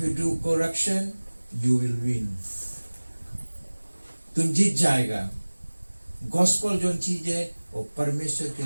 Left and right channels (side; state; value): both; inverted; correlation -1.00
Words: you do correction, you will win. तुम जीत जाएगा। गॉस्पेल जो चीज है वो परमेश्वर